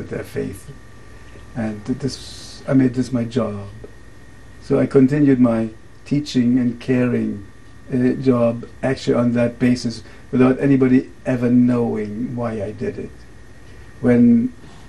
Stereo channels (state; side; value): identical; both; correlation 1.00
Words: their faith. And I made this my job. So I continued my teaching and caring job actually on that basis without anybody ever knowing why I did it.